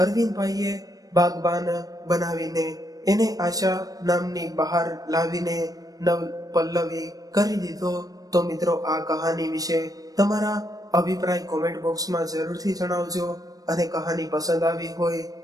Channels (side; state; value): left; late; 0.18 ms